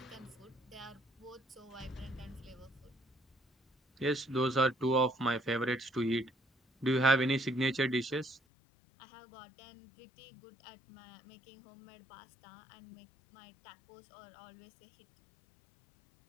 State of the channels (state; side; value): drops out; right; at 8.4 s